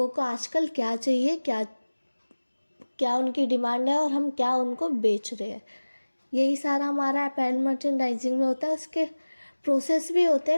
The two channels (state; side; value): inverted; both; correlation -1.00